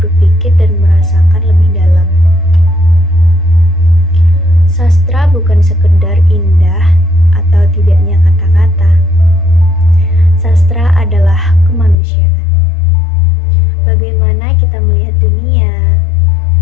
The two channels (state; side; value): drops out; right; at 12.0 s